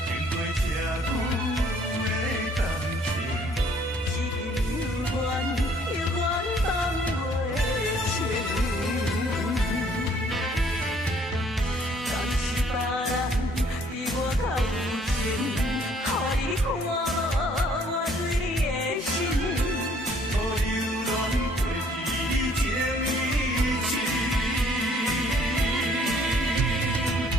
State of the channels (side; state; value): both; normal; correlation 0.61